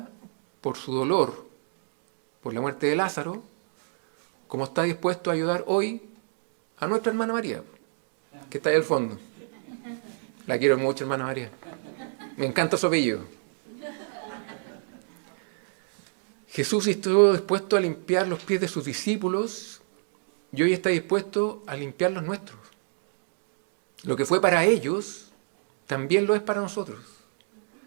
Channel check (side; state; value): left; silent; digital silence